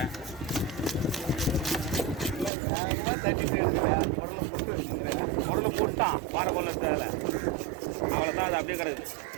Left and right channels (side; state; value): left; drops out; at 2.5 s